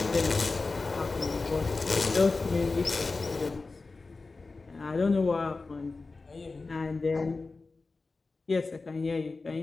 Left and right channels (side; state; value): right; quieter; 3.8 dB